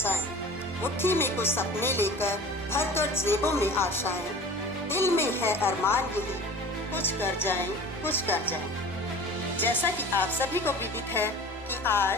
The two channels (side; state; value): both; normal; correlation 0.40